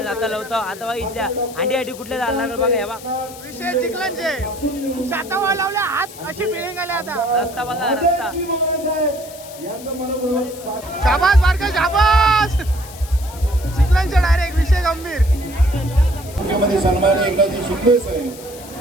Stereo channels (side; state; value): left; noise; hiss, 17 dB below the sound